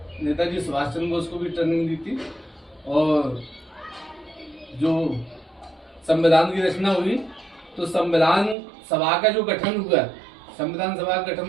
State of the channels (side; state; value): left; drops out; at 8.6 s